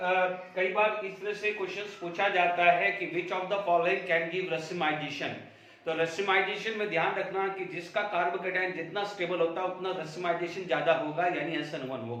बार इस तरह से क्वेश्चंस पूछा जाता है कि विच of the following can give racemisation. तो रेसिमाइजेशन में ध्यान रखना कि जिसका कार्बोकेटाइन जितना स्टेबल होता है उतना रेसिमाइजेशन ज्यादा होगा, यानी SN1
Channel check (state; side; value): identical; both; correlation 1.00